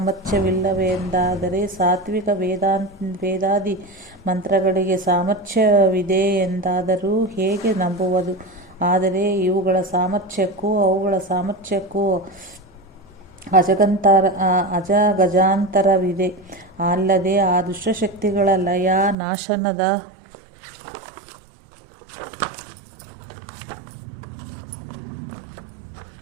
ಸಾತ್ವಿಕ ವೇದಾದಿ ಮಂತ್ರಗಳಿಗೆ ಸಾಮರ್ಥ್ಯವಿದೆ ಎಂದಾದರೂ ಹೇಗೆ ನಂಬುವುದು? ಆದರೆ ಇವುಗಳ ಸಾಮರ್ಥ್ಯಕ್ಕೂ ಅವುಗಳ ಸಾಮರ್ಥ್ಯಕ್ಕೂ ಅಜಗಜಾಂತರವಿದೆ. ಅಲ್ಲದೆ ಆ ದುಷ್ಟಶಕ್ತಿಗಳ ಲಯ ನಾಶನದ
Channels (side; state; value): left; drops out; at 19.2 s